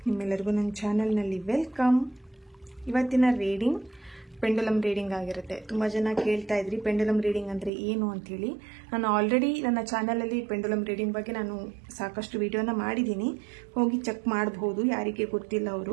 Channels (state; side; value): drops out; left; at 7.7 s